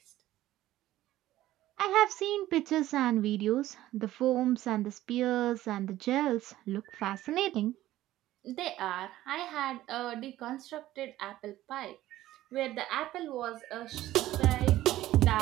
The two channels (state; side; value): quieter; left; 14.8 dB